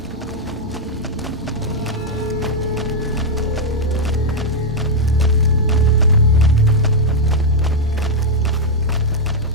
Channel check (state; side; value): normal; both; correlation -0.02